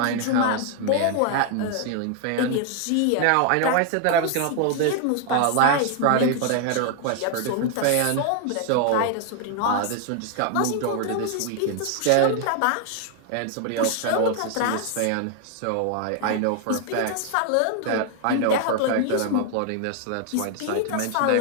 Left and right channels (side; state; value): both; different; correlation 0.00